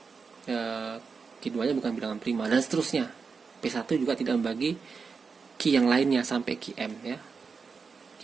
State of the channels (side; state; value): left; quieter; 5.2 dB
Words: Q2 nya bukan bilangan prima dan seterusnya. P1 juga tidak membagi Q yang lainnya sampai QM ya.